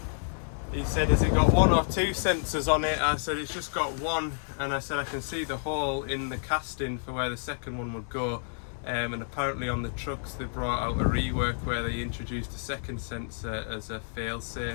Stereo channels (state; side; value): silent; right; digital silence